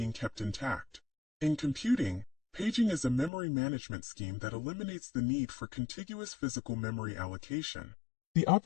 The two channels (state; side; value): drops out; right; at 3.3 s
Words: kept intact. In computing, paging is a memory management scheme that eliminates the need for contiguous physical memory allocation. The